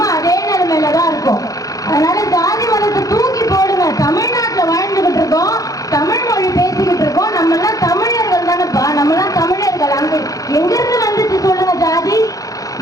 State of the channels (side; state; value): right; late; 0.17 ms